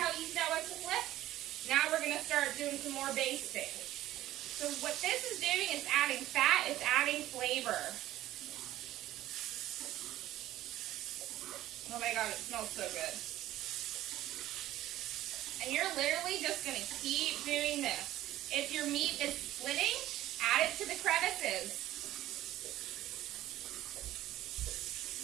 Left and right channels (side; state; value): left; quieter; 14.4 dB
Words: easy that was to flip? Now we're going to start doing some more basting. So what this is doing is adding fat, it's adding flavor. Oh my god, it smells so good. And you're literally just going to keep doing this. If your meat is splitting, add it to the crevices.